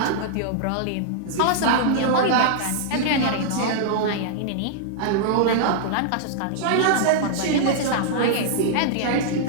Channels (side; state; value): both; different; correlation -0.01